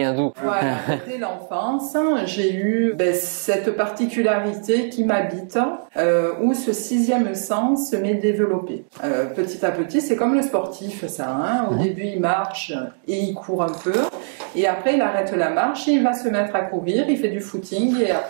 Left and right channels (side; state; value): left; silent; digital silence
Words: d'où? Voilà, dès l'enfance, j'ai eu cette particularité qui m'habite, où ce sixième sens m'est développé. Petit à petit, c'est comme le sportif, ça. Au début, il marche et il court un peu, et après, il arrête la marche et il va se mettre à courir, il fait du footing et